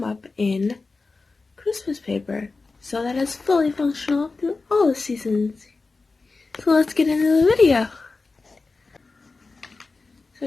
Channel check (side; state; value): right; quieter; 3.9 dB